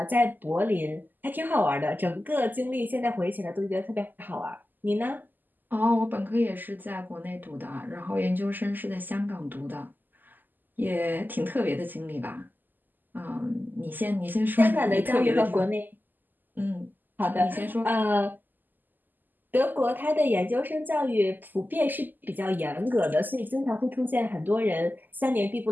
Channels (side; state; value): left; late; 0.087 ms